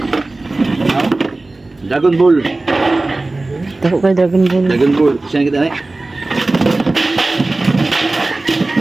Dragon Ball. Tako kay Dragon Ball. Dragon Ball. Siya kita na eh.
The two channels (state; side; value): quieter; left; 3.1 dB